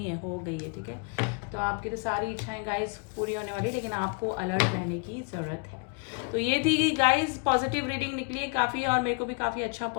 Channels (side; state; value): right; quieter; 34.3 dB